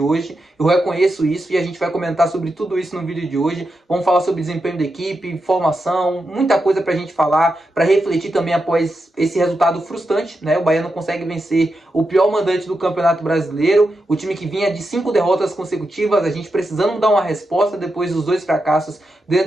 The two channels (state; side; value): normal; both; correlation 0.87